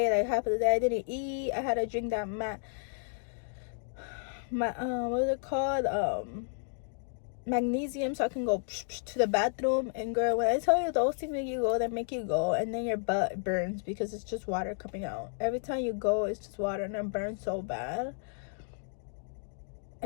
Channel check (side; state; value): right; silent; digital silence